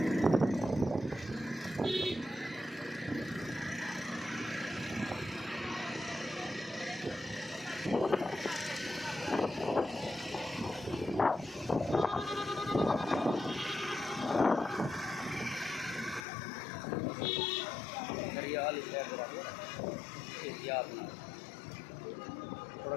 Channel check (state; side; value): drops out; right; at 16.2 s